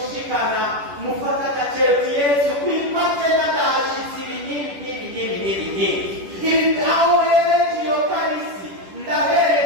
mufata agaciro Yesu kwipate n'agahashitsi ibi aho hereje iyo karisi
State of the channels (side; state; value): left; late; 10 ms